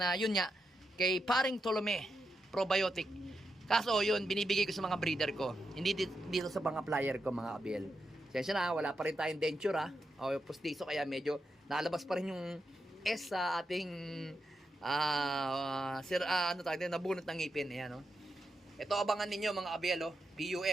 yun nga, kay Paring Tolome probiotic. Kaso yun, binibigay ko sa mga breeder ko. Hindi dito sa mga flyer ko, mga abiel. Sensya na, wala pa rin tayong denture, ha. O postizo, kaya medyo nalabas pa rin yung S sa ating nabunot ng ngipin. Ayan, no? Ito abangan ninyo, mga abiel,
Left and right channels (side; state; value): both; normal; correlation 0.85